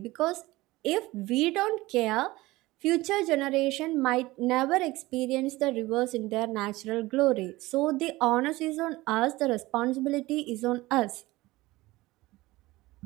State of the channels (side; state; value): left; quieter; 19.5 dB